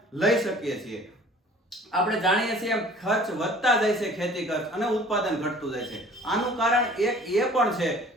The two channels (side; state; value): both; normal; correlation 0.49